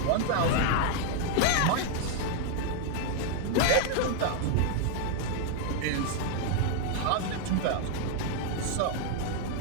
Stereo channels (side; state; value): both; different; correlation 0.00